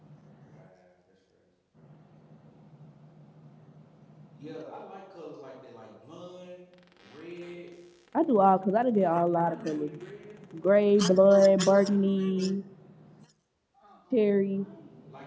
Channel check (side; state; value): both; identical; correlation 1.00